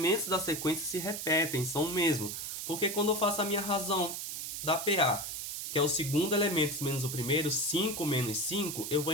da sequência se repetem, são o mesmo. Porque quando eu faço a minha razão da PA, que é o segundo elemento menos o primeiro, 5 menos 5, eu vou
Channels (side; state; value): right; noise; hiss, 5 dB below the sound